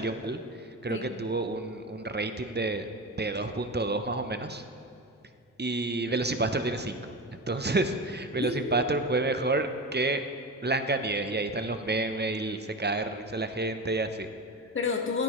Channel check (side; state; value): both; normal; correlation 0.24